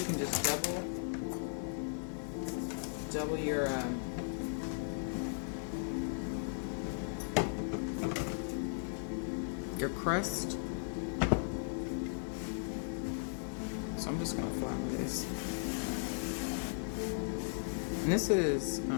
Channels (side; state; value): right; silent; digital silence